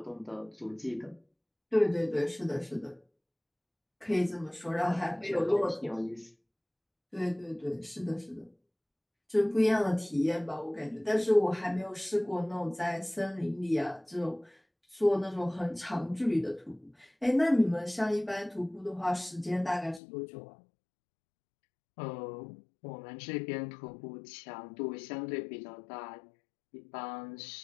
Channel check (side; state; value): right; drops out; at 20.0 s